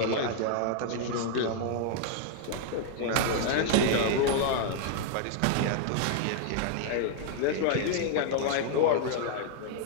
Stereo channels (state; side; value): different; both; correlation 0.00